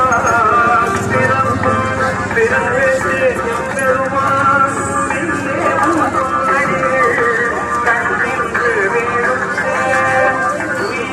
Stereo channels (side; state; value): both; identical; correlation 1.00